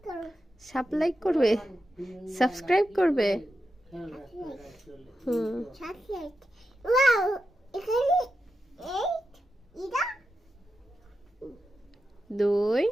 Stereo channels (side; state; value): both; normal; correlation 0.89